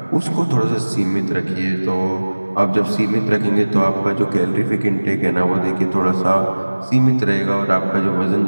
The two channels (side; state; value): both; inverted; correlation -1.00